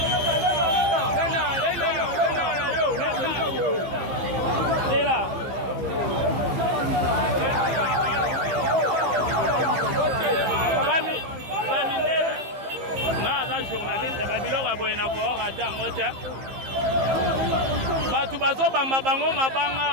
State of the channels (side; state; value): left; late; 15 ms